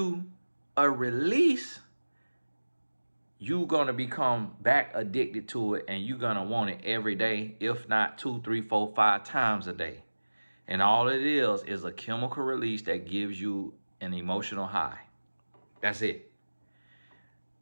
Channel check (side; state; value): both; inverted; correlation -1.00